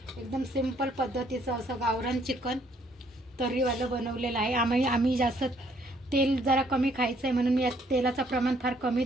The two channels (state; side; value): normal; both; correlation 0.66